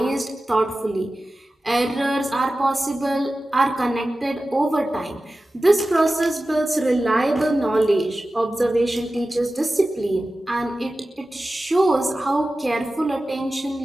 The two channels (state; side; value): normal; both; correlation 0.95